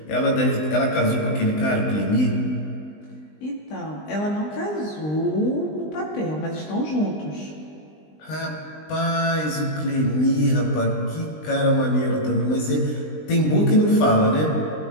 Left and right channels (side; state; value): right; late; 20 ms